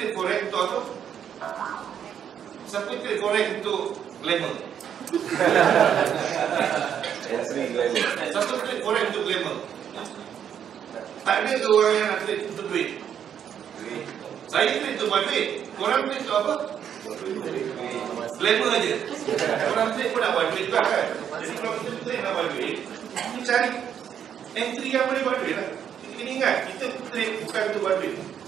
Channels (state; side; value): quieter; left; 8.8 dB